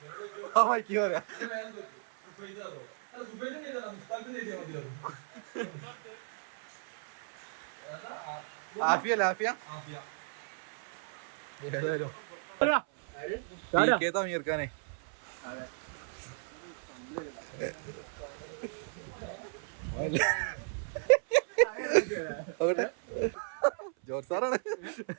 മൈക്ക് പറയാ ആഫിയ ഏതായാലും തമീർക്കാനെ ജോർജ് സാറാണ്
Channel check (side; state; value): left; silent; 55 dB below the other